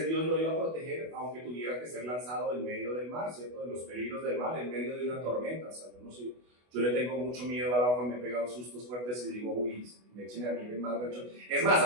Dios lo iba a proteger, aunque tuviera que ser lanzado en medio del mar, ¿cierto? De los peligros del mar, en medio de una tormenta. O sea, yo no sé, yo le tengo mucho miedo al agua, me he pegado sustos fuertes y digo, uy, me echen a mí en el mar. Es más,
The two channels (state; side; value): late; left; 24 ms